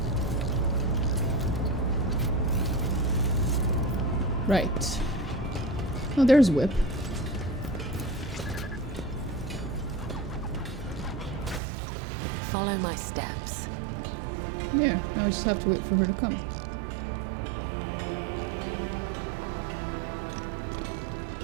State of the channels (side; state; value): left; drops out; at 11.6 s